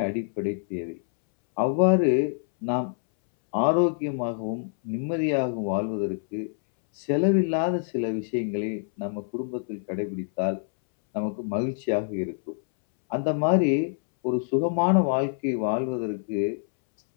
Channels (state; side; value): silent; right; 61 dB below the other